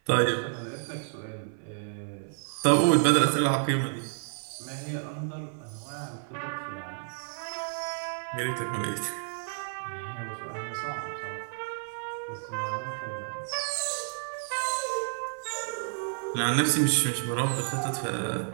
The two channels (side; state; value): left; silent; 57 dB below the other